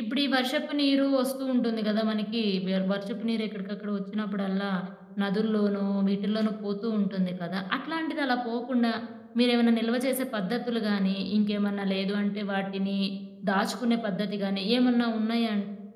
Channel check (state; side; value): identical; both; correlation 1.00